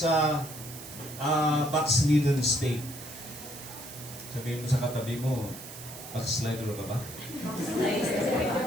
backslidden state. Sabihin mo sa katabi mo, backslider ka ba?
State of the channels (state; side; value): noise; right; hiss, 13 dB below the sound